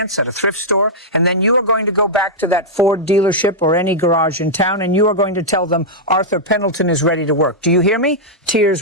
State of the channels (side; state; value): both; normal; correlation -0.07